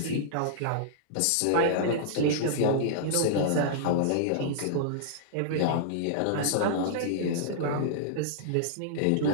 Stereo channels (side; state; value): both; different; correlation -0.02